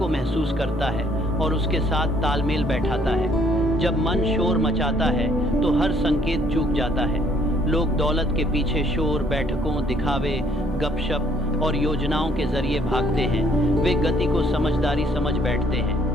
महसूस करता है और उसके साथ तालमेल बैठाता है। जब मन शोर मचाता है तो हर संकेत चूक जाता है। लोग दौलत के पीछे शोर, बैठकों, दिखावे, गपशप और योजनाओं के जरिए भागते हैं। वे गति को समझदारी समझ बैठते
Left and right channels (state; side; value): normal; both; correlation 0.64